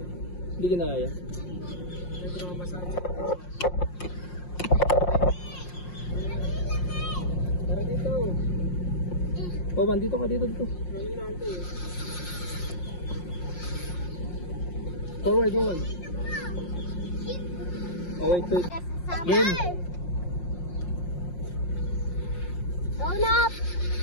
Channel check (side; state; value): right; late; 5.6 ms